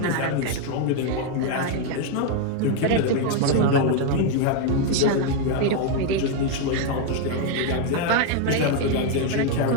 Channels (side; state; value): both; different; correlation 0.01